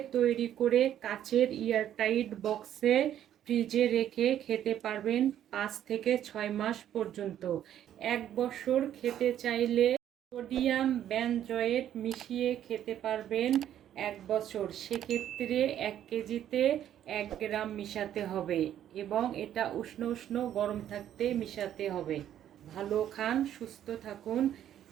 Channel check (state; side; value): quieter; left; 10.9 dB